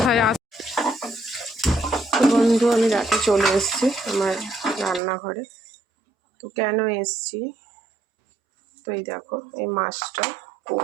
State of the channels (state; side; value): drops out; left; at 5.0 s